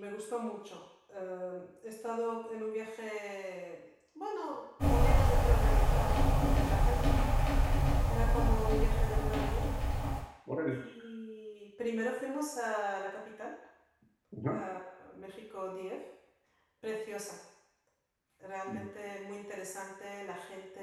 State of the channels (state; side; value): identical; both; correlation 1.00